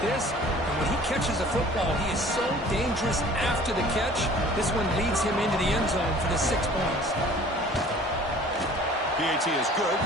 this. And when he catches a football, he is so dangerous after the catch. This one leads him into the end zone for the 6 points. PAT is good,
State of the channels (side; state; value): both; normal; correlation 0.49